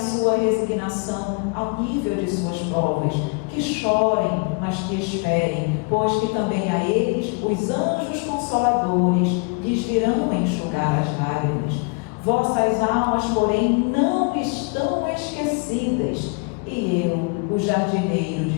resignação ao nível de suas provas, que chorem, mas que esperem, pois que também a eles os anjos consoladores lhes virão enxugar as lágrimas. Vossas almas, porém, não estão esquecidas, e eu, o jardineiro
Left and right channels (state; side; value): quieter; right; 33.7 dB